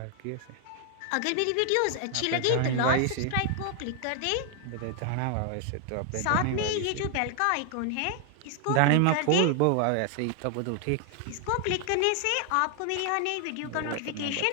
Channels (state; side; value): different; both; correlation 0.00